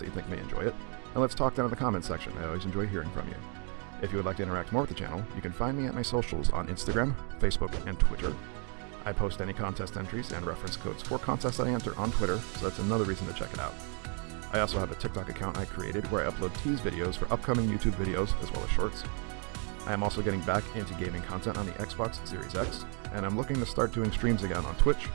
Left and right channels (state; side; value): quieter; left; 39.0 dB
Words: that you think may enjoy it. And let's talk down in the comments section. I always enjoy hearing from you. If you would like to interact more with the channel, you can find me at my socials on Instagram, Facebook, and Twitter. I post any contest entries and reference codes for contests that I enter on Twitter, so that's another reason to check it out. I also have a TikTok account I created where I upload tease videos for upcoming YouTube videos as well as shorts. I am also getting back into gaming content on the Xbox Series X, and I'm looking to start doing streams again on Twitch,